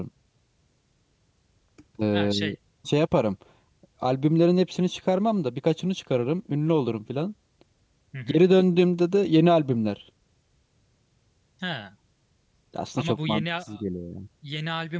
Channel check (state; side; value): identical; both; correlation 1.00